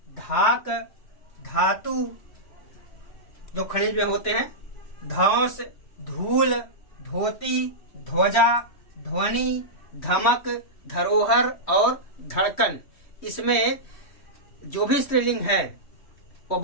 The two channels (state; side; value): late; right; 3.1 ms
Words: धाक, धातु जो खनिज में होते हैं, धौंस, धूल, धोती, ध्वजा, ध्वनि, धमक, धरोहर और धड़कन। इसमें जो भी स्त्रीलिंग है वो